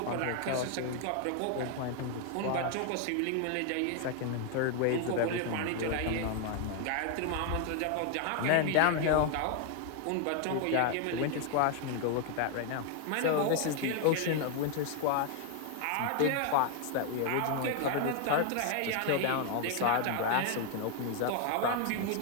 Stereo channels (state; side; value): different; both; correlation 0.00